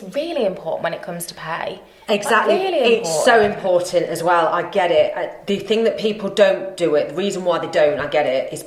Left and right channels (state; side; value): identical; both; correlation 1.00